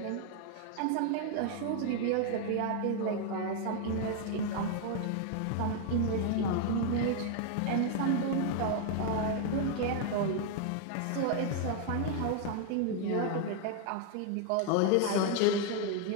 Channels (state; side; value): different; both; correlation 0.00